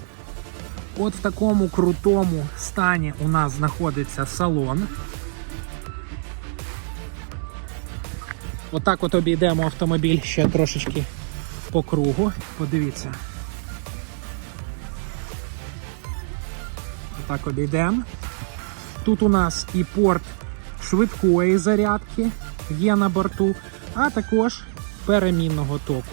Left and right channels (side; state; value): left; silent; digital silence